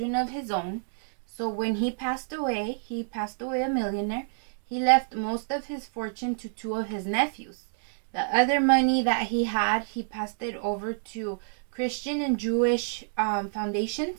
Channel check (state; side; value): silent; left; digital silence